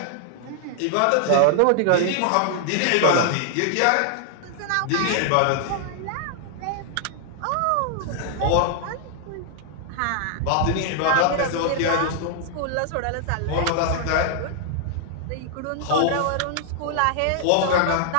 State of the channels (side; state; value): both; different; correlation 0.00